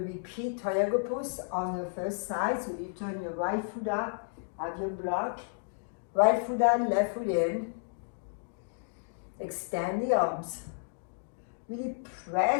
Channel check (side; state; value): right; silent; digital silence